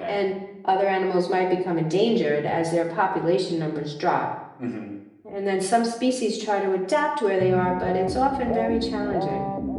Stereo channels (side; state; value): both; identical; correlation 1.00